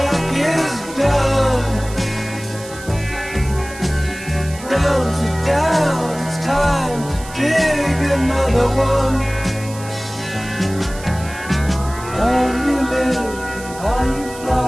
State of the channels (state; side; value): noise; right; hiss, 16 dB below the sound